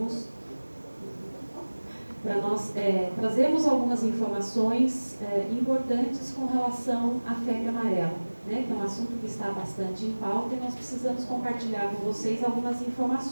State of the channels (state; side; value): inverted; both; correlation -1.00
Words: para nós trazermos algumas informações importantes com relação à febre amarela, né, que é um assunto que está bastante em pauta e nós precisamos compartilhar com vocês algumas